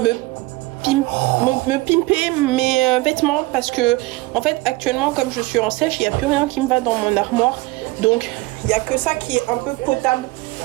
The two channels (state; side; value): quieter; left; 21.2 dB